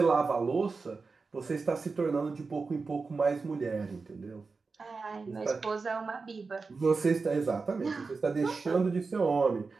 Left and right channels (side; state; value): left; quieter; 4.3 dB